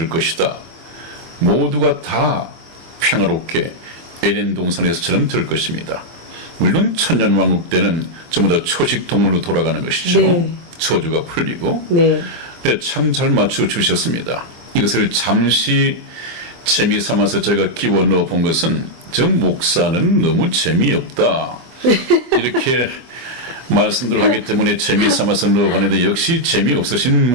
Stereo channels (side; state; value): left; late; 23 ms